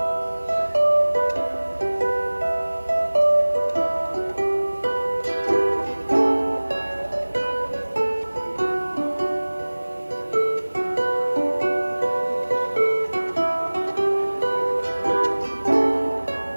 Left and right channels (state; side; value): inverted; both; correlation -1.00